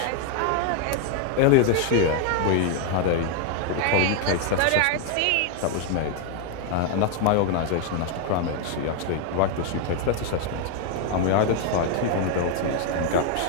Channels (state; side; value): different; both; correlation 0.01